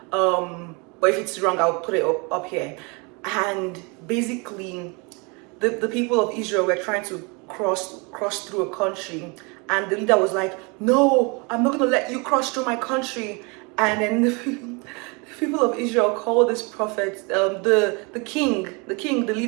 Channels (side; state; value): left; quieter; 30.3 dB